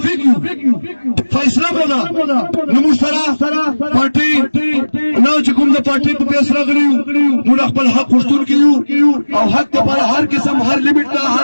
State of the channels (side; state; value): both; inverted; correlation -1.00